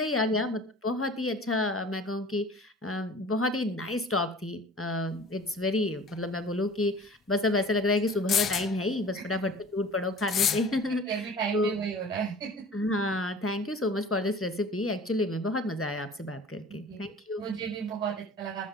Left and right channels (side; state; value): both; normal; correlation 0.43